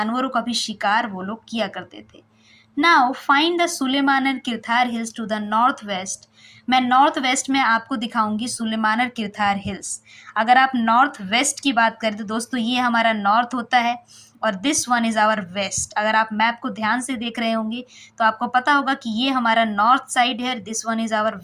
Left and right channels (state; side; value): identical; both; correlation 1.00